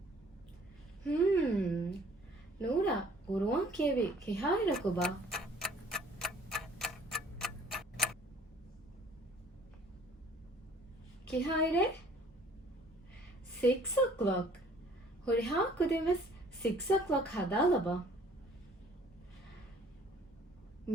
ನೂರ ಗುರುವಾನ್ ಕೇವಿ ಕಿಹಾಯಿರಕುಬಾ ಕಿಹಾಯಿರೆ 6 o'clock ಹುರಿಹಾಕುದಿವೆಸ್ 6 o'clock ಹದಾಲಬ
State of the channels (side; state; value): both; normal; correlation 0.55